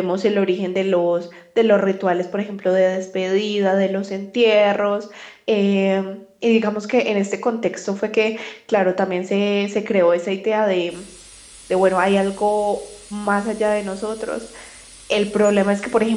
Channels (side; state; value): both; identical; correlation 1.00